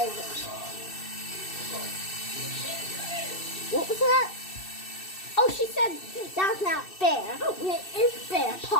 What was that? Oh, she said that's not fair. It is fair,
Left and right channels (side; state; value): right; late; 2.6 ms